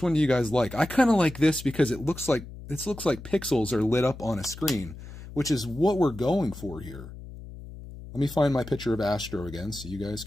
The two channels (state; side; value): noise; left; hum, 14 dB below the sound